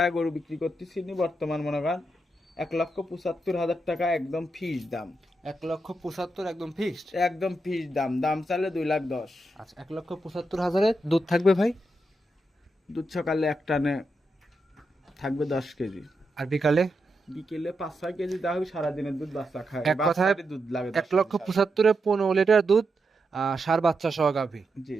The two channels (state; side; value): normal; both; correlation 0.85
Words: গরু বিক্রি করতেছি নি বর্তমান মনে করেন 1,75,000 টাকা একদম ফিক্স দাম। 1,75,000 একদম ফিক্সড? একদম ফিক্স দাম, দাম চালে 2,10,000। আচ্ছা, 1,75,000 দুধ থাকবে ভাই? দুধ সকালে এক টানে থাকবে 10 কেজি, আর বিকালে? বিকেলে 5-6 কেজি দেওয়া হবে, সারাদিনের দুধ বাচ্চা খায়, এক কথায় বাচ্চারই দুধ লাগে 1,75,000 15 লিটার দুধ, সার বাচ্চা সহ গাভী। জি